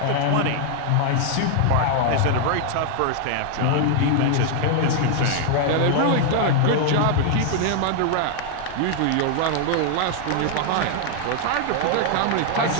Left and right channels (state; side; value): different; both; correlation 0.00